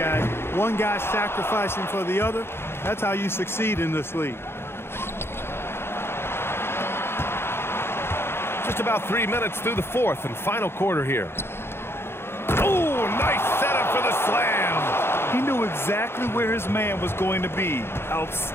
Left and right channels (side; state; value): right; late; 0.12 ms